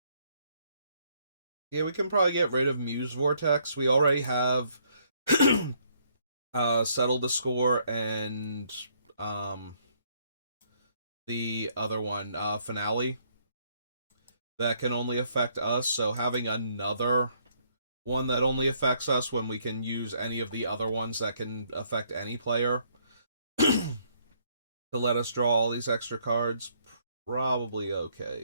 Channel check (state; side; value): inverted; both; correlation -0.68